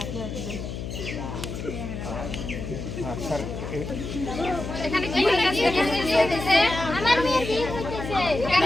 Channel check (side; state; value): left; noise; hum, 7 dB below the sound